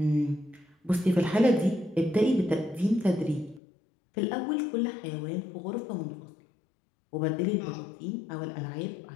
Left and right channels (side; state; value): right; drops out; at 3.6 s